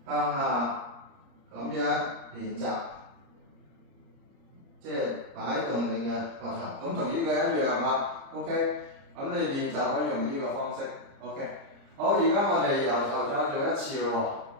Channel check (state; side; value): late; left; 30 ms